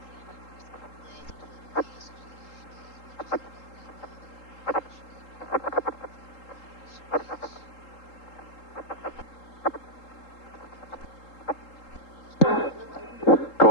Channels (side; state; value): right; late; 3.8 ms